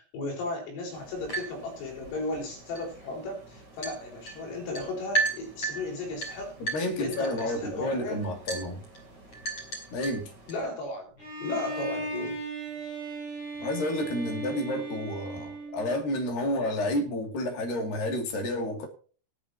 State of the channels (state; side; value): late; right; 13 ms